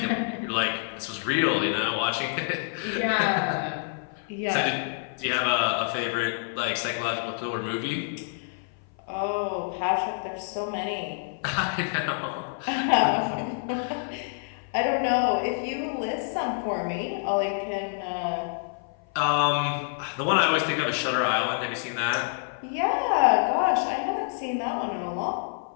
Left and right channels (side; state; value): right; silent; 56 dB below the other